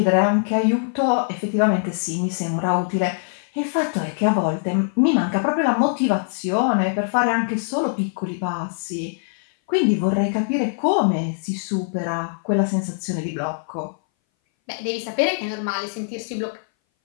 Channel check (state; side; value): silent; right; 60 dB below the other